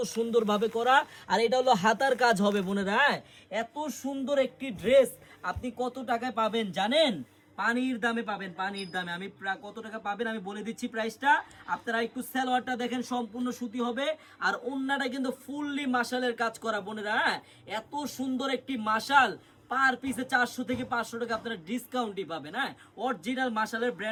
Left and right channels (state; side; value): identical; both; correlation 1.00